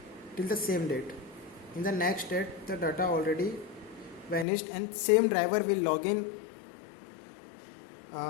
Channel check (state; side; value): drops out; right; at 4.5 s